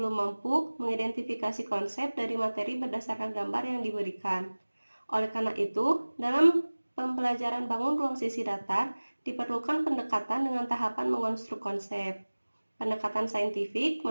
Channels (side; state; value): both; inverted; correlation -1.00